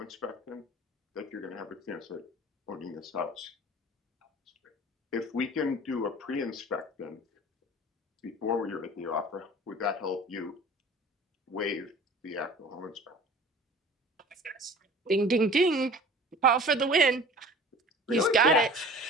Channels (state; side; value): normal; both; correlation 0.43